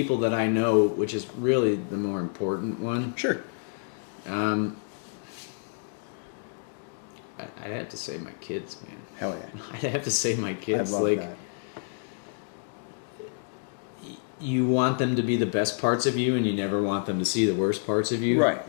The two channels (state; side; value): silent; right; digital silence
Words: that I know, which is really the more important one, Sure. I'd have to say my kids, man. Hell yeah. I'd have to say my kids. I love Like, that. you want them to be the best parts of you, and you never want them to see the worst parts of you. Right.